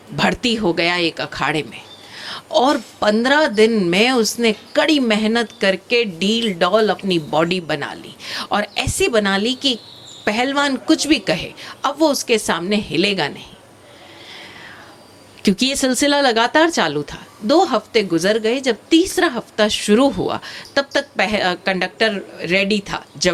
भर्ती हो गया एक अखाड़े में, और 15 दिन में उसने कड़ी मेहनत करके डील डॉल अपनी बॉडी बना ली, और ऐसे बना ली कि पहलवान कुछ भी कहे अब वो उसके सामने हिलेगा नहीं। क्योंकि ये सिलसिला लगातार चालू था। 2 हफ्ते गुजर गए। जब तीसरा हफ्ता शुरू हुआ तब तक कंडक्टर रेडी था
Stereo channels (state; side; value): identical; both; correlation 1.00